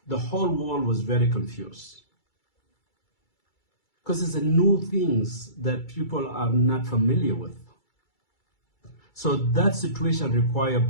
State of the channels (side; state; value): right; late; 2.3 ms